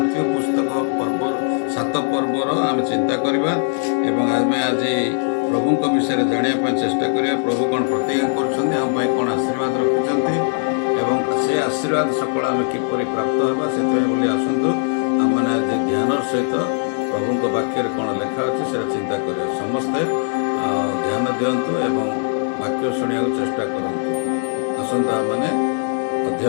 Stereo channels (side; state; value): right; silent; digital silence